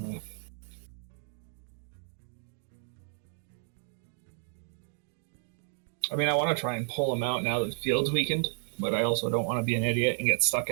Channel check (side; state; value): left; silent; 56 dB below the other